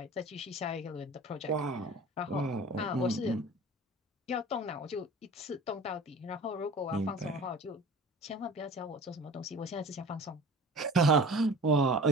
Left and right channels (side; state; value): both; normal; correlation 0.41